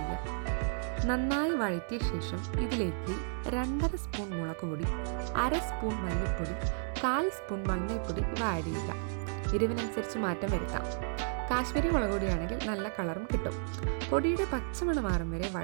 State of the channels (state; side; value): silent; left; digital silence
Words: നന്നായി വഴറ്റിയ ശേഷം ഇതിലേക്ക് 2.5 സ്പൂൺ മുളക് പൊടി, 1/2 സ്പൂൺ മല്ലിപ്പൊടി, 1/4 സ്പൂൺ മഞ്ഞൾപ്പൊടി ഇവ ആഡ് ചെയ്യുക. എരിവിനനുസരിച്ച് മാറ്റം വരുത്താം. കാശ്മീരി മുളക് പൊടിയാണെങ്കിൽ നല്ല കളറും കിട്ടും. പൊടിയുടെ പച്ചമണം മാറും വരെ